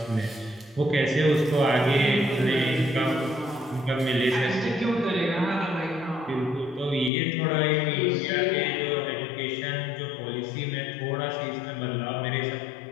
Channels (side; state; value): right; drops out; at 7.1 s